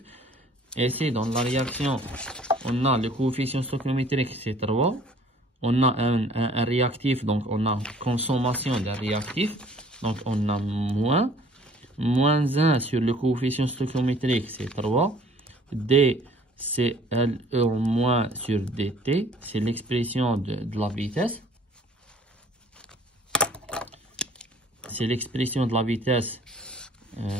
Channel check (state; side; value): normal; both; correlation 0.54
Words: Et ici, dans la réaction, on a le coefficient stoichiométrique, c'est 3. On a un réactif, donc on a consommation d'un réactif. Donc on a moins 1 sur le coefficient stoichiométrique, c'est 3. D, c'est LE en moins sur DT. C'est l'expression de la vitesse. C'est l'expression de la vitesse